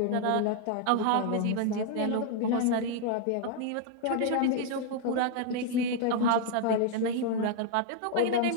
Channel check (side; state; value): both; different; correlation 0.00